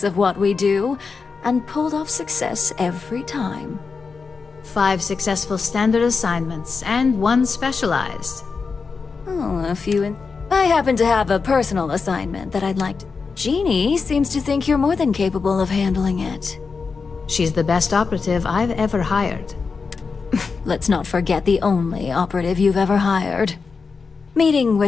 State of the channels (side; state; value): right; quieter; 4.9 dB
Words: of what we do and pulled off success every time. 5 successful standard assignments and 1 specialized. Oh, a few I happen to have a personal assignment that I'd like to... Jeannie seems to think you're more than capable of handling it. She's the best operative I've ever hired. Let's not forget the only operative you've ever hired. Meeting